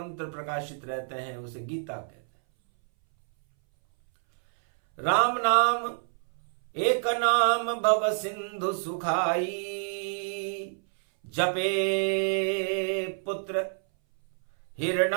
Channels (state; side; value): silent; left; 59 dB below the other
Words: प्रकाशित रहते हैं, उसे गीता कहते हैं। राम नाम एक नाम भव सिंधु सुखाई, जपे पुत्र